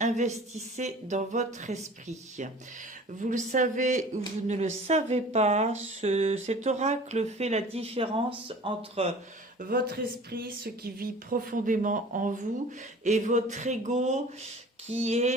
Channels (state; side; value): normal; both; correlation 0.44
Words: Investissez dans votre esprit ». Vous le savez ou vous ne le savez pas, cet oracle fait la différence entre votre esprit, ce qui vit profondément en vous, et votre ego qui est,